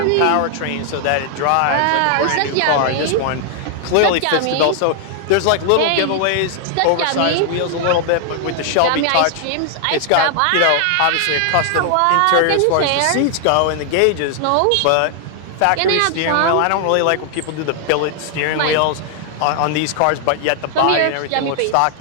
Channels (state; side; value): different; both; correlation 0.00